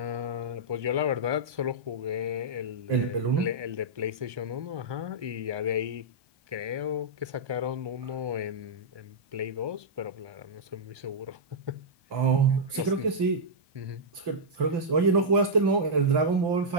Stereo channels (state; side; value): late; left; 1.2 ms